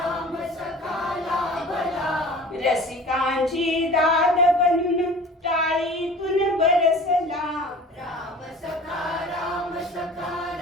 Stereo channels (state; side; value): normal; both; correlation 0.42